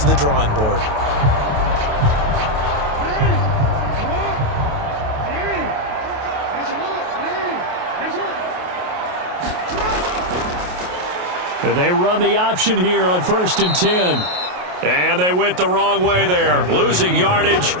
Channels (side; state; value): left; late; 28 ms